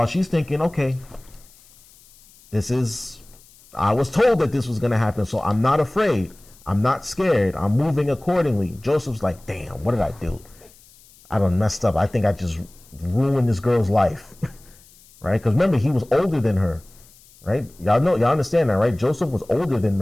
she's thinking, okay, I was told that this was going to happen, so I'm not afraid. I'm not scared. I'm moving accordingly. Joseph's like, damn, what did I do? I done messed up. I think I just ruined this girl's life, right? Because remember, he was older than her, right? Y'all understand that, right? Joseph was older than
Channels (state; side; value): noise; left; hiss, 26 dB below the sound